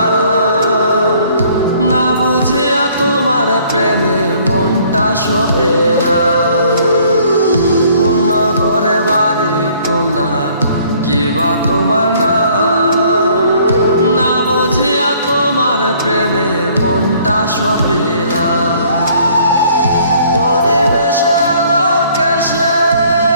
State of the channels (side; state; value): both; inverted; correlation -0.59